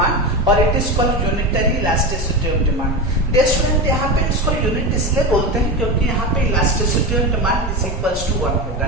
और it is called unitary elasticity of demand. Dear student, यहाँ पे इसको यूनिट इसलिए बोलते हैं क्योंकि यहाँ पे elasticity of demand is equals to 1 होगा,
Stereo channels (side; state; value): both; normal; correlation 0.20